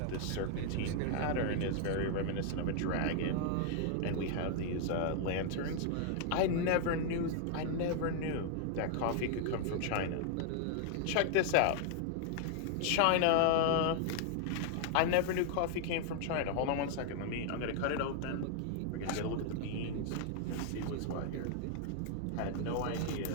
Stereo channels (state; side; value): different; both; correlation 0.00